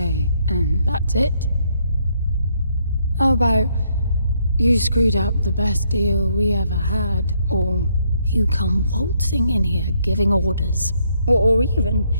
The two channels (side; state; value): both; inverted; correlation -0.72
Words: and that's it? How about you screwed up the best deal we ever had, or you come waltzing in here giving orders, or even